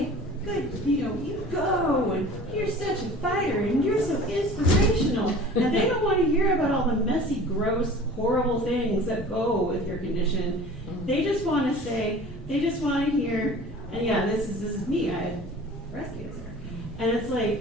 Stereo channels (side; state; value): both; normal; correlation 0.43